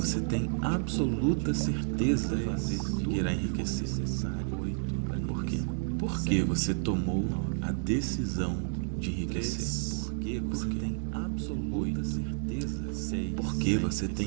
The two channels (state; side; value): silent; left; digital silence